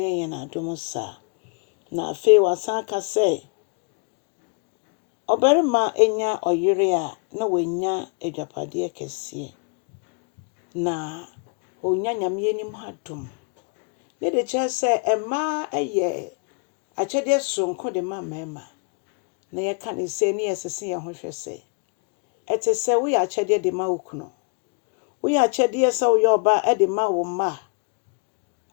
yen adom sa. Na afe wasan ka se obarima enya oyire a na wenya adwapade kese. Na onya nyame anim hadom. Ye de che se ema eye akyede sonko de ma mema. Na ye ka ne se ne yesese ye ho hwese. Ete se wo ya akyede de ma okuno. Wo ya akyede se wo yo ba e de ma wo ma.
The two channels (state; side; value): quieter; right; 36.9 dB